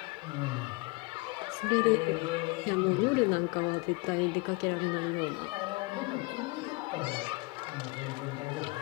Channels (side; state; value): right; quieter; 25.6 dB